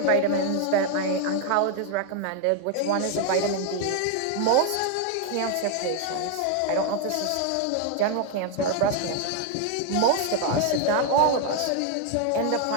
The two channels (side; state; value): both; different; correlation 0.00